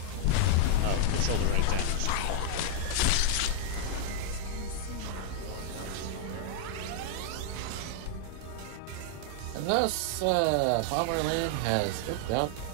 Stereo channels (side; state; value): both; different; correlation -0.01